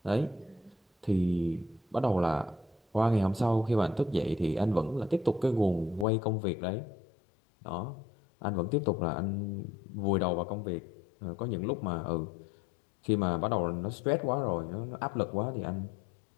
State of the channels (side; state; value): right; drops out; at 6.1 s